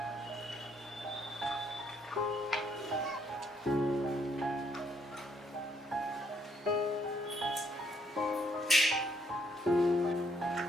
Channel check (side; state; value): both; normal; correlation 0.70